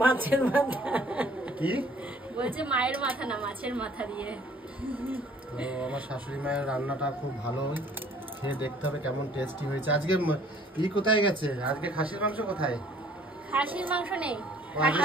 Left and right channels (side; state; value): both; normal; correlation 0.57